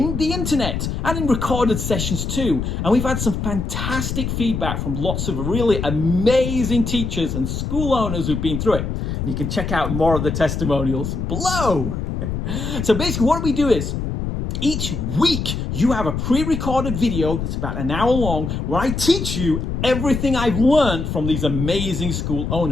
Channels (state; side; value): noise; left; rumble, 3 dB below the sound